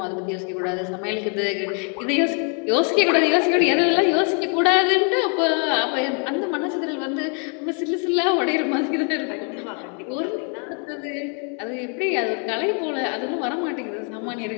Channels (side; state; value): right; quieter; 39.7 dB